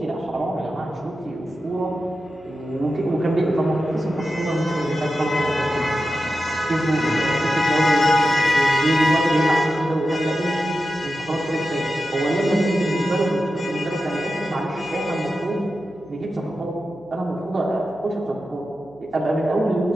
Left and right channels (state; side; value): noise; right; hum, 27 dB below the sound